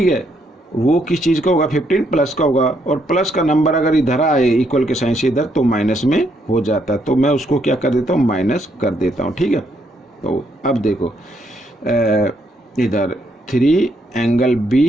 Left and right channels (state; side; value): normal; both; correlation 0.74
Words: है, वो किस चीज़ का होगा 15 प्लस का होगा, और प्लस का नंबर अगर इधर आए इक्वल के साइन से इधर तो माइनस में हो जाता है, तो मैं उसको क्या कर देता हूँ माइनस कर देता हूँ, ठीक है। तो अब देखो इधर 3 एंगल